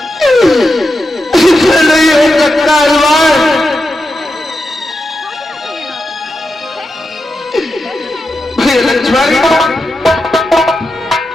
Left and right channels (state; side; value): normal; both; correlation 0.88